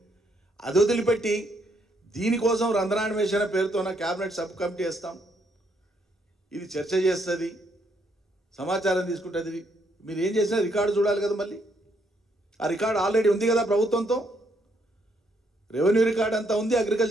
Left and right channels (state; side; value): normal; both; correlation 0.73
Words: అది వదిలిపెట్టి దీనికోసం రంధ్రాన్వేషణ పేరుతో క్యాబినెట్ సబ్ కమిటీ వేస్తాం, ఇది చర్చ చేస్తుంది, సమాచారం తీసుకుంటుంది. మీరు ఏం చేసినా రికార్డు చూడాలి కదా. మళ్ళీ ఆ రికార్డు ఆల్రెడీ ఉంది కదా ప్రభుత్వంతో. రెవెన్యూ రికార్డ్ అంతా ఉంది,